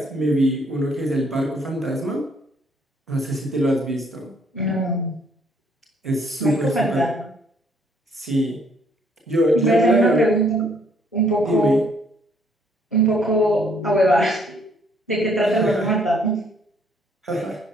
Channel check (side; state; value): both; normal; correlation 0.66